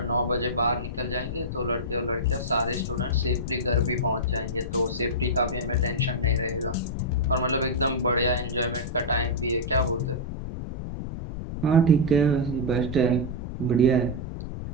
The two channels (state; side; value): noise; left; rumble, 6 dB below the sound